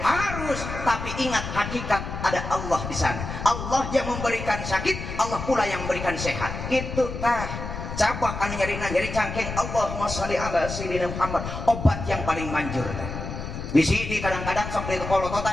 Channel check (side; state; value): left; noise; rumble, 7 dB below the sound